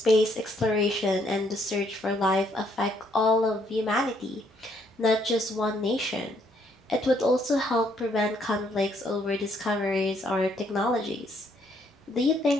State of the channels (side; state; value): both; normal; correlation 0.69